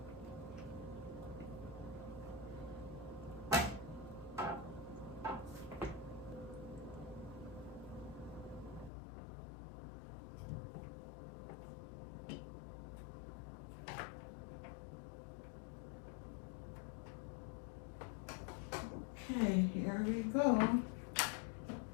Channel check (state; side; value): drops out; right; at 8.9 s